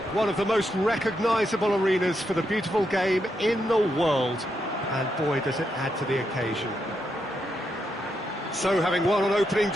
one of the most recognisable arenas for the beautiful game in the world. And boy, does it add to the occasion. So, having won on opening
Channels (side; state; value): both; normal; correlation 0.82